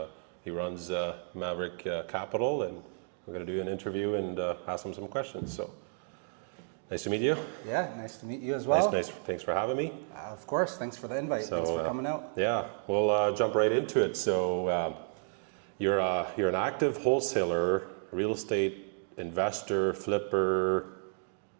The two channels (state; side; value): silent; left; 56 dB below the other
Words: runs Maverick Capital, and we're going to do an interview and ask him some questions. So, nice to meet you. Yeah, nice to meet you as well. Nice. Thanks for having me. Of course. Thanks for the invite. Thanks for coming out. Yeah, we'll jump right into it. So, you're an active wholesaler, real estate investor, flipper.